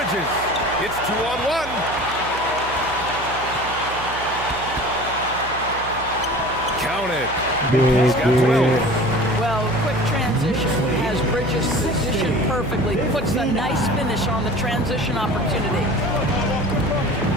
It's 2-on-1. Count it. He's got 12. Well, quick transition has Bridges positioned perfectly. Puts a nice finish on the transition opportunity.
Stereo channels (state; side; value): noise; right; hum, 14 dB below the sound